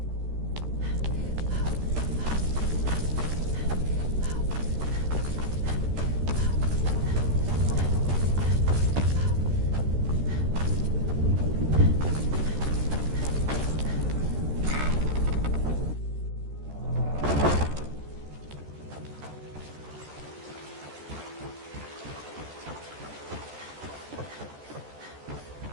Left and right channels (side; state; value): left; late; 13 ms